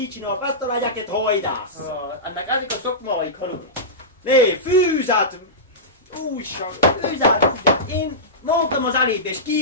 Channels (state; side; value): normal; both; correlation -0.16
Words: csinál, ezt a legyeket hajdász. Ennek ezek a szokmáik, hallod? Né, fűzát, újság. Fűzát. Én mondtam az elébe, és